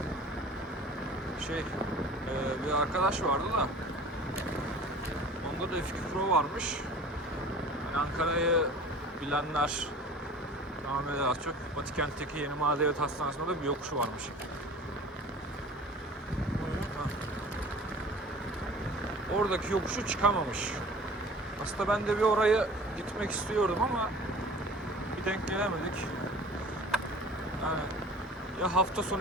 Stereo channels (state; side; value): normal; both; correlation 0.43